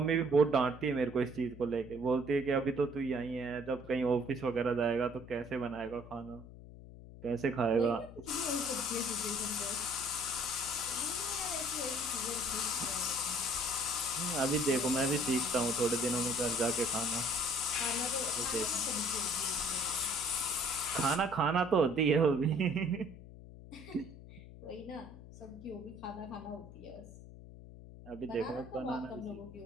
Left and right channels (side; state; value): left; noise; hum, 16 dB below the sound